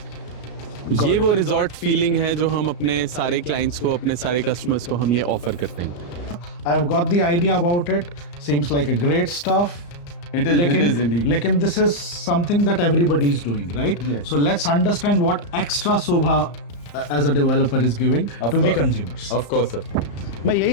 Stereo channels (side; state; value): right; late; 34 ms